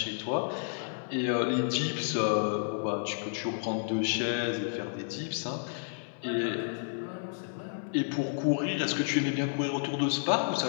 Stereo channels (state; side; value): silent; right; 57 dB below the other